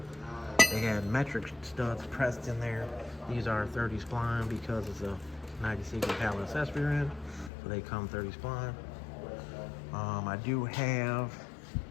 They had metric studs pressed in there. These are 30 spline because it's a 90 pallet accessory end, so they come 30 spline. I do have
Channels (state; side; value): drops out; right; at 7.5 s